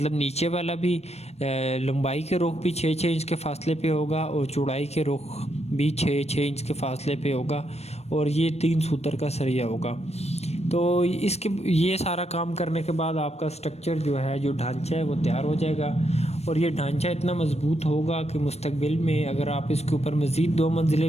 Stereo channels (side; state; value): right; late; 0.31 ms